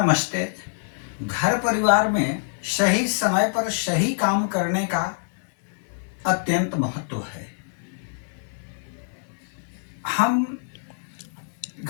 घर परिवार में सही समय पर सही काम करने का अत्यंत महत्व है। हम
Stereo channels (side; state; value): right; silent; 62 dB below the other